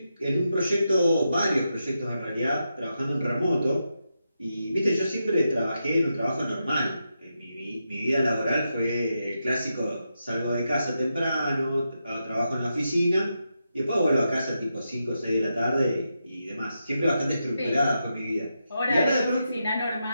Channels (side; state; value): both; inverted; correlation -0.86